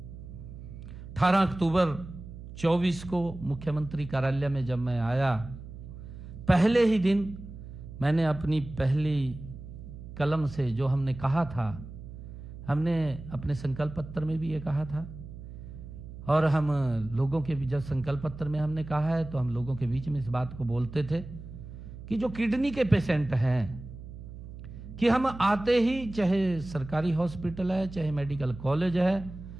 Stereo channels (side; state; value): right; noise; hum, 13 dB below the sound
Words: 18 अक्टूबर 24 को मुख्यमंत्री कार्यालय में जब मैं आया, पहले ही दिन मैंने अपनी पहली कलम से जो हमने कहा था, हमने अपने संकल्प पत्र में भी ये कहा था, और हम लोगों के जब संकल्प पत्र में हमने कहा है तो हम लोगों के बीच में इस बात को बोलते थे कि जो किडनी के पेशेंट हैं, कि हम आते ही, चाहे सरकारी हॉस्पिटल है चाहे मेडिकल कॉलेज है,